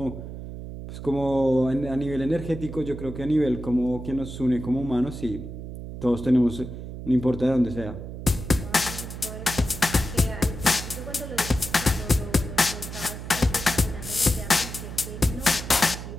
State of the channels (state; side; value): noise; right; hum, 9 dB below the sound